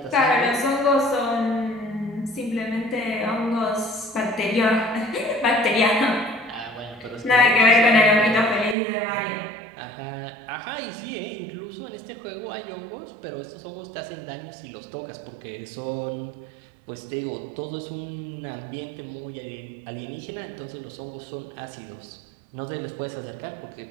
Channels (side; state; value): left; drops out; at 8.8 s